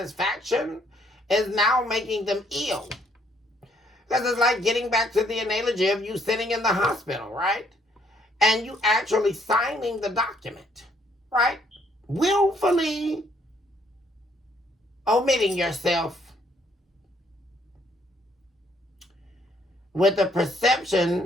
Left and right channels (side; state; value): both; normal; correlation 0.68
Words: is now making them ill. Because it's like getting back to the analogy of you sitting in the hospital, right? And you actually signing the document, right? Willfully omitting yourself with the